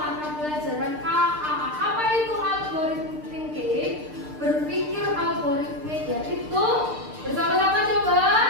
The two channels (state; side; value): late; left; 6.6 ms